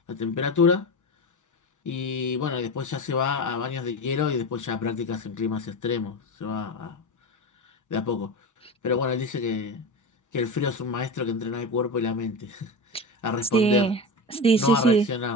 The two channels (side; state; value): both; normal; correlation 0.23